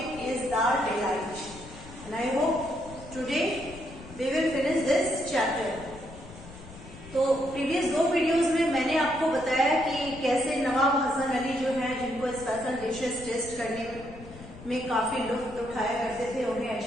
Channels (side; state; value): left; noise; rumble, 16 dB below the sound